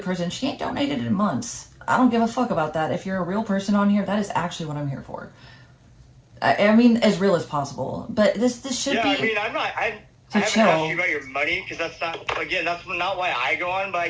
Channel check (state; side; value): identical; both; correlation 1.00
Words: person. She ain't donated in months. I don't give a fuck about that. If you're a real person on here, that is actually what I'm here for. I mean, as real as possible. But this should be... Yeah, I mean, I haven't asked you about your money, because that's not why I go on, but I